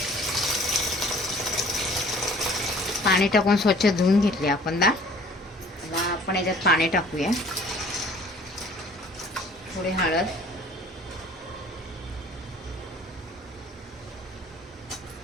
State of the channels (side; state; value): both; normal; correlation 0.52